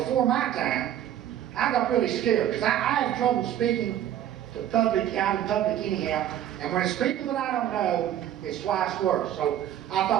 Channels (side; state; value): left; quieter; 11.4 dB